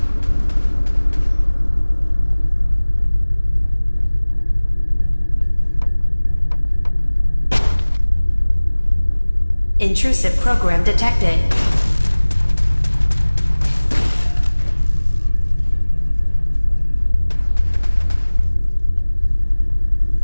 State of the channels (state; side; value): inverted; both; correlation -1.00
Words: Intrusive program detected.